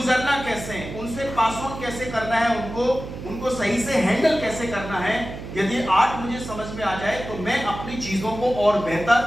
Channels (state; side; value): noise; right; hum, 10 dB below the sound